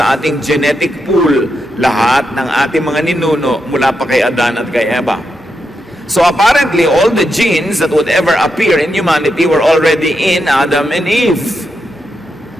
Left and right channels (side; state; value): both; normal; correlation 0.84